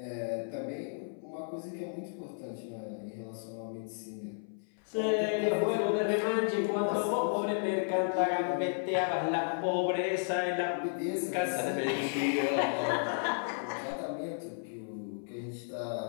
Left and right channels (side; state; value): right; silent; 56 dB below the other